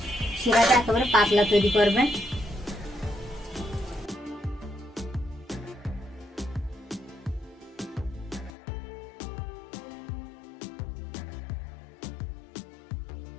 শিরাটা একেবারে পাতলা তৈরি করবেন।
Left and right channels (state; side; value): drops out; right; at 8.5 s